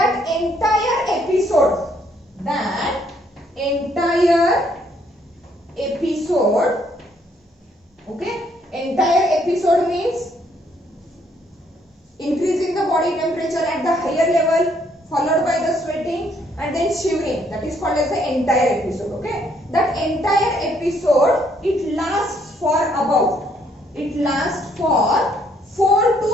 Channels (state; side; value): normal; both; correlation 0.68